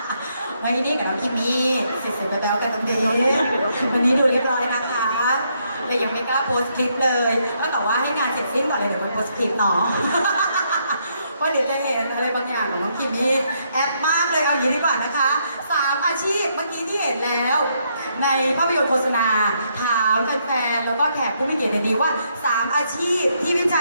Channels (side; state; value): both; inverted; correlation -0.75